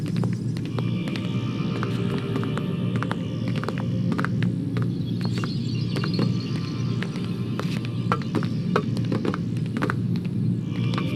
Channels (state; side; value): identical; both; correlation 1.00